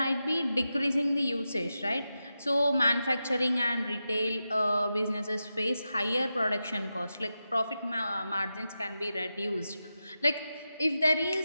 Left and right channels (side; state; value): both; inverted; correlation -0.90